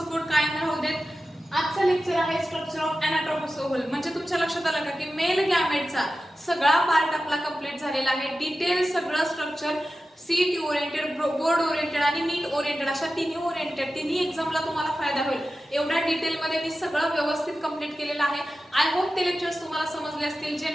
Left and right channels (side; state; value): both; normal; correlation 0.93